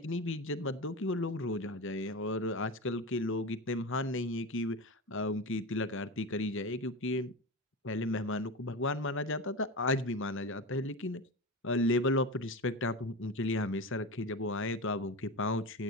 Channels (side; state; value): both; normal; correlation 0.24